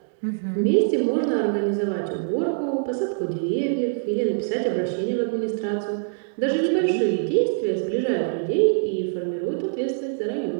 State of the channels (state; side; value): silent; left; 63 dB below the other